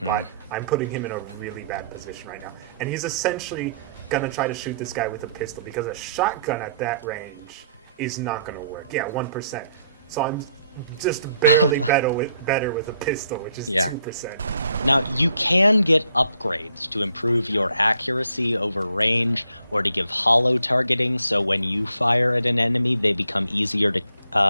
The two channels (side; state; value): both; inverted; correlation -0.68